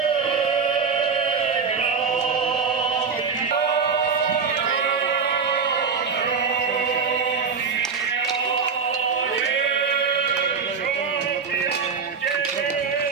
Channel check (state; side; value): quieter; left; 5.7 dB